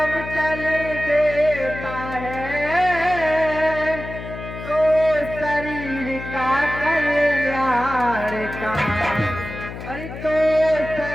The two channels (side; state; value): left; noise; hum, 10 dB below the sound